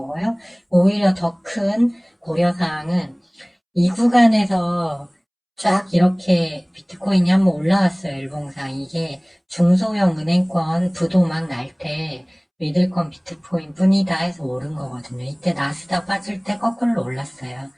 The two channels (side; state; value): both; identical; correlation 1.00